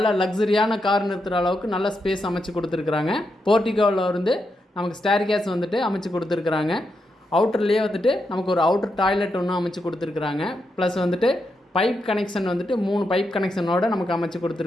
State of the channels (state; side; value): normal; both; correlation 0.84